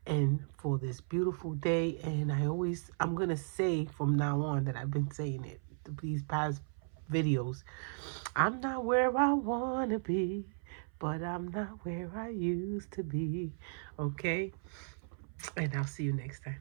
and for this beautiful day. And I'm going to say from now on that I've been saying it these past videos. I'm not where I want to be, but I'm not where I used to be, okay? And I'll see you next time.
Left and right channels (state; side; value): silent; left; 54 dB below the other